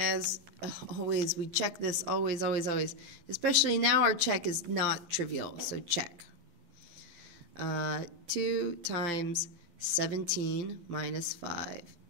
always, we check this always, always, always. Especially now our check is not trivial, so check. 2 times 17 minus 5.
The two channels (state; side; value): late; left; 11 ms